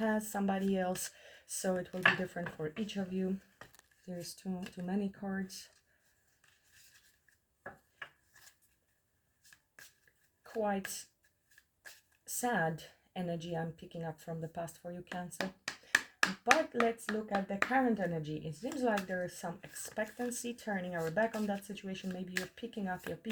somebody else. So it will be different for each of you. There's too many cards. Quite sad energy I'm picking up from the past for you, Cancer. But let's look at the current energy. It seems like there is some expectancy, turning our back on that situation. Maybe you're picking up your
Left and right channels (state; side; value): identical; both; correlation 1.00